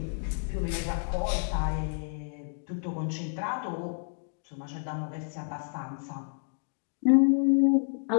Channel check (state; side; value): silent; right; digital silence